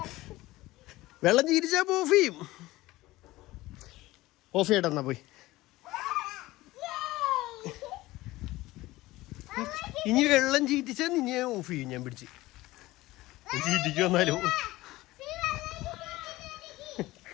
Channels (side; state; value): right; quieter; 18.3 dB